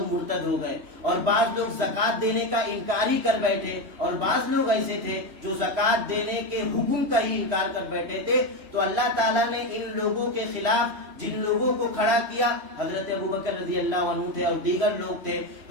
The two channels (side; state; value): left; late; 3.0 ms